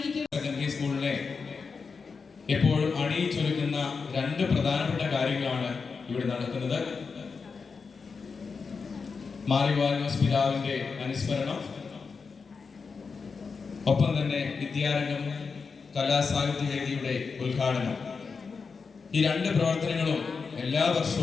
സെക്കൻഡറി സ്കൂളിനെ എപ്പോഴും അണിയിച്ചൊരുക്കുന്ന രണ്ട് പ്രധാനപ്പെട്ട കാര്യങ്ങളാണ് ഇവിടെ നടക്കുന്നത്. മാറിവാനോസ് പിതാവിന്റെ അനുസ്മരണം, ഒപ്പം തന്നെ വിദ്യാരംഗം കലാസാഹിത്യ വേദിയുടെ ഉദ്ഘാടനം. ഈ രണ്ട് പ്രവർത്തനങ്ങളും എല്ലാ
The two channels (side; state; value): right; quieter; 5.1 dB